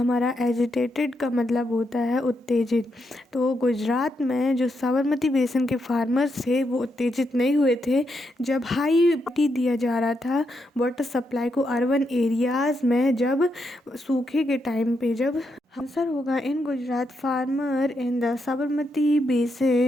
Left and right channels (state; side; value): normal; both; correlation 0.81